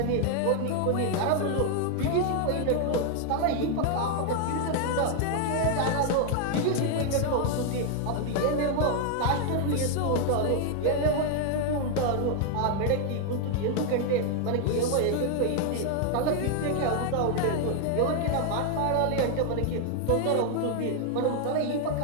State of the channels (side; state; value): both; different; correlation 0.00